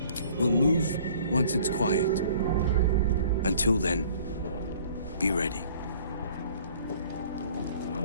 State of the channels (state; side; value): inverted; both; correlation -0.53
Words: We'll move once it's quiet. Until then, be ready.